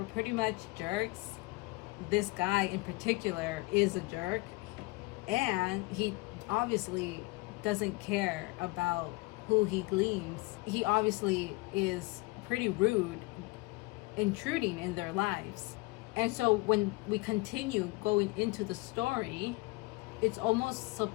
pretty much jerks. This guy in particular is a jerk, and he obviously doesn't care about who he gleans. He obviously is pretty rude, intruding in their lives. And so when we continue going into the story, it's almost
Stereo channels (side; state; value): right; quieter; 24.2 dB